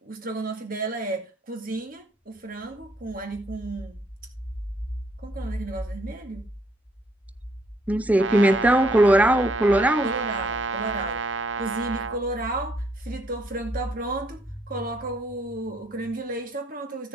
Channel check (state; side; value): normal; both; correlation 0.69